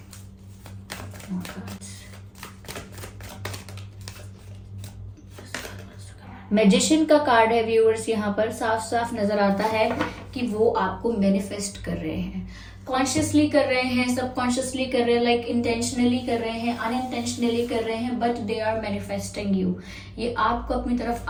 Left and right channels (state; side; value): identical; both; correlation 1.00